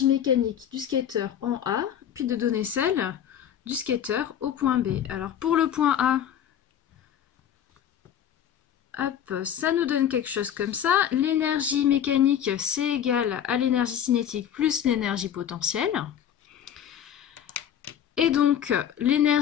mécanique du skater en A, puis de donner celle du skater au point B. Alors pour le point A, hop, ça nous donne quelque chose comme ça. L'énergie mécanique, c'est égal à l'énergie cinétique plus l'énergie potentielle. Et donc,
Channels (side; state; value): right; quieter; 9.6 dB